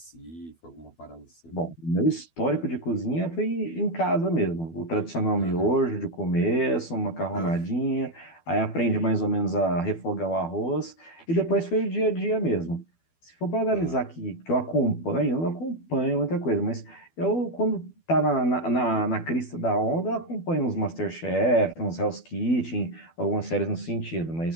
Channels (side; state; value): right; late; 12 ms